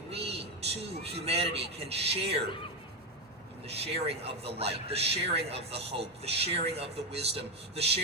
we, too, humanity, can share in the sharing of the light, the sharing of the hope, the sharing of the wisdom, the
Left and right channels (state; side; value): normal; both; correlation 0.10